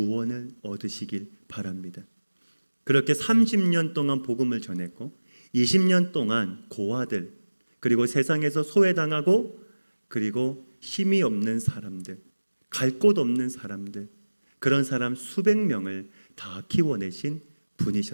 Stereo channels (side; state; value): both; inverted; correlation -1.00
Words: 얻으시길 바랍니다. 그렇게 30년 동안 복음을 전했고 20년 동안 고아들, 그리고 세상에서 소외당하고 그리고 힘이 없는 사람들, 갈 곳 없는 사람들, 그런 사람 수백 명을 다 키워내신